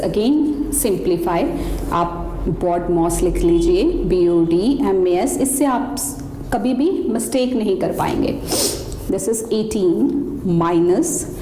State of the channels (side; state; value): both; identical; correlation 1.00